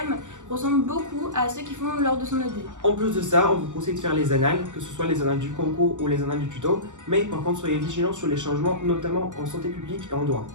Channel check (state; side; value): late; left; 0.86 ms